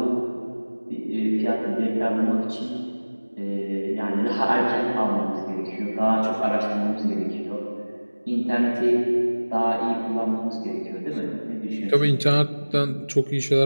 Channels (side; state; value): both; inverted; correlation -1.00